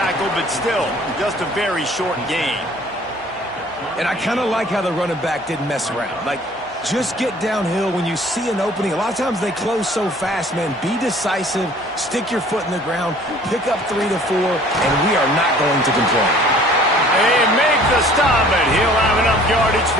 but still, just a very short gain. And I kind of like how the running back didn't mess around. Like, just get downhill when you see an opening. A lot of times they close so fast, man. Be decisive, stick your foot in the ground, pick up 3 to 4, and we are not going to complain. They make the stop, and he'll have enough yardage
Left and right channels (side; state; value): both; normal; correlation 0.52